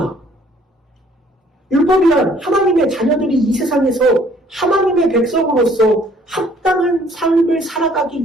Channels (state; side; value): normal; both; correlation 0.59